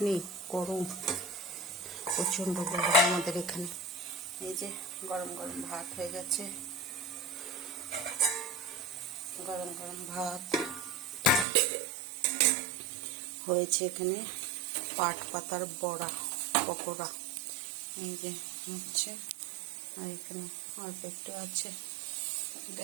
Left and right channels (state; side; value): drops out; left; at 11.5 s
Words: নেই, গরম, প্রচণ্ড গরম আমাদের এখানে। এই যে গরম গরম ভাত হয়ে গেছে, গরম গরম ভাত হয়েছে। এখানে পাট পাতার বড়া, পকোড়া এই যে হচ্ছে। আর এখানে অল্প একটু আছে,